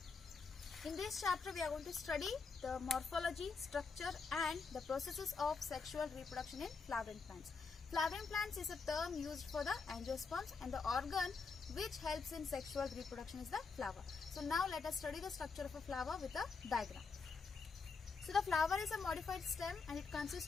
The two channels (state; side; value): quieter; right; 4.8 dB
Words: In this chapter, we are going to study the morphology, structure and the processes of sexual reproduction in flowering plants. Flowering plants is a term used for the angiosperms, and the organ which helps in sexual reproduction is the flower. So now let us study the structure of a flower with a diagram. So the flower is a modified stem and it